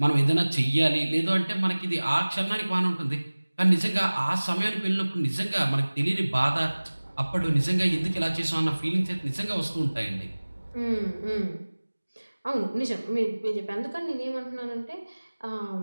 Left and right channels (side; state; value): both; inverted; correlation -1.00